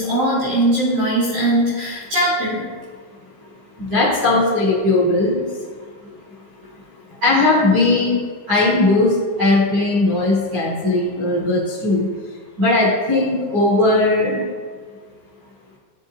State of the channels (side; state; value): left; late; 15 ms